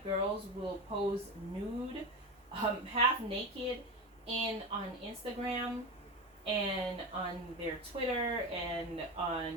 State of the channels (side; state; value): both; normal; correlation 0.21